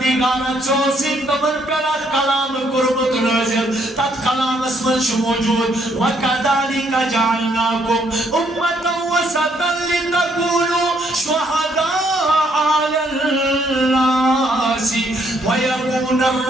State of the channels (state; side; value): normal; both; correlation 0.70